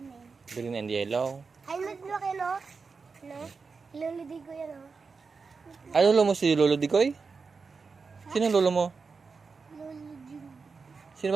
Green and yellow. Ay, lagi no? No? Luludi ko yan, oh. Ay, lolo mo si Lolo Digoy? Sino ang lolo mo? Luludi. Sino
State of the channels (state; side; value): quieter; left; 4.8 dB